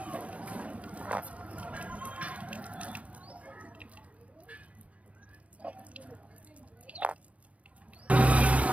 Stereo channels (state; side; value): late; left; 0.066 ms